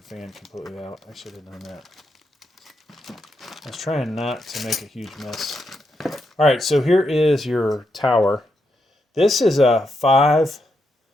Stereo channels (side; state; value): both; normal; correlation 0.82